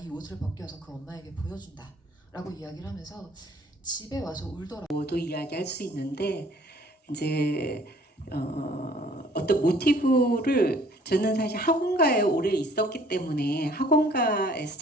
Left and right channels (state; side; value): normal; both; correlation 0.56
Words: 옷을 벗겨서 그 엄마에게 보여준다 라고 이야기를 하면서 집에 와서 울더라고요. 도 이야기할 수 있는데 이제 어떤 모티브를 저는 사실 학원가에 오래 있었기 때문에 학원가에서